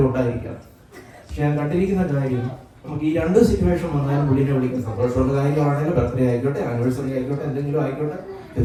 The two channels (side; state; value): both; identical; correlation 1.00